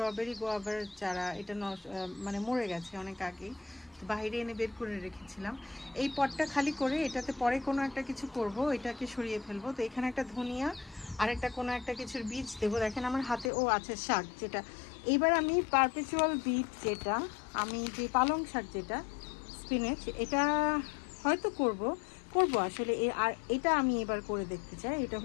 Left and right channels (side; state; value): right; drops out; at 13.5 s